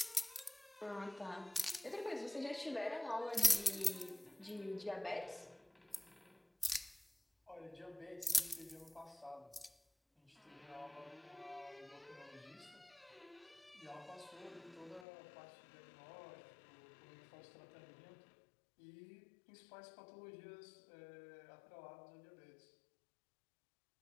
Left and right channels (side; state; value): right; drops out; at 15.1 s